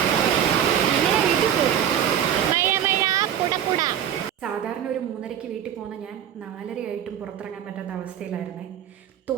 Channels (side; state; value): left; quieter; 9.8 dB